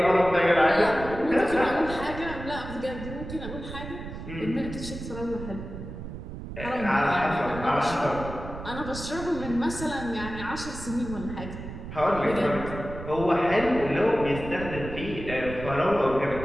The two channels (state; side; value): noise; right; rumble, 10 dB below the sound